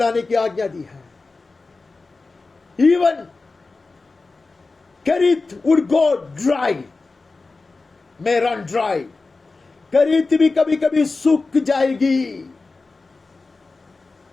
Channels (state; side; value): quieter; right; 3.8 dB